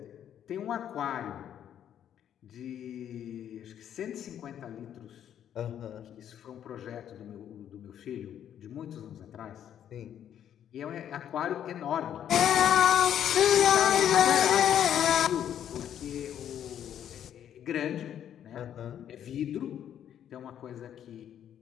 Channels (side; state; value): right; quieter; 10.0 dB